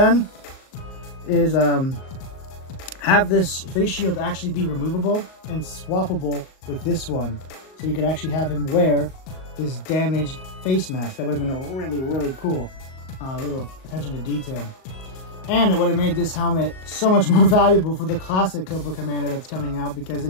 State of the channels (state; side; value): late; right; 38 ms